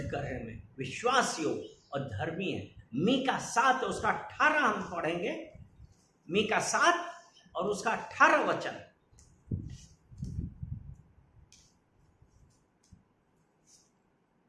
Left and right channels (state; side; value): identical; both; correlation 1.00